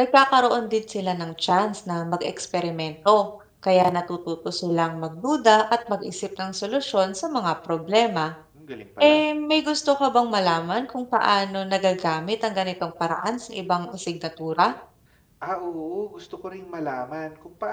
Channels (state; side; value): identical; both; correlation 1.00